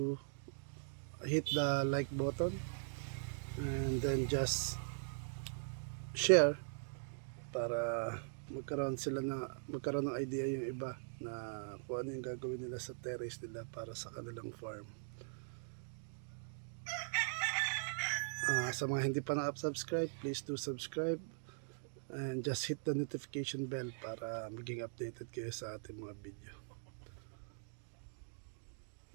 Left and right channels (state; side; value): silent; left; digital silence